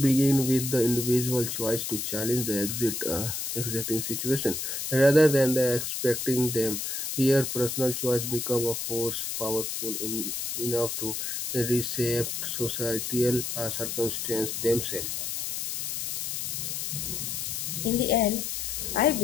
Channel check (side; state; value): left; noise; hiss, 3 dB below the sound